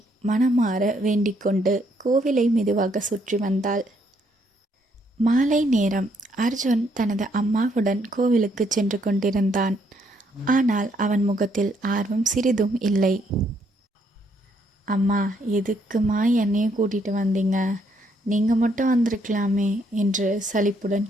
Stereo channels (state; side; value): normal; both; correlation 0.71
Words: மனமாற வேண்டிக்கொண்டு கோவிலை மெதுவாக சுற்றி வந்தாள். மாலை நேரம். அர்ஜுன் தனது அம்மாவுடன் கோவிலுக்கு சென்று கொண்டிருந்தான். ஆனால் அவன் முகத்தில் ஆர்வம் சிறிதும் இல்லை. அம்மா, எதுக்குமா என்னையும் கூட்டிகிட்டு வந்தீங்க? நீங்கள் மட்டும் வந்திருக்கலாமே என்று சலிப்புடன்